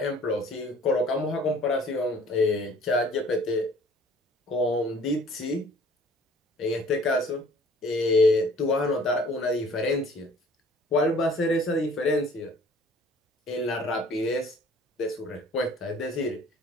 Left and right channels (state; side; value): normal; both; correlation 0.53